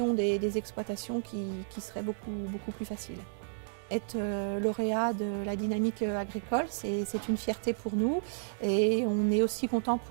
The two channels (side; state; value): left; silent; digital silence